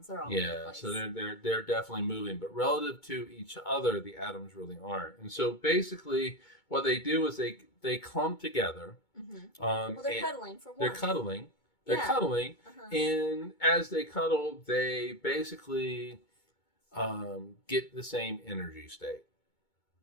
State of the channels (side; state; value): right; late; 2.2 ms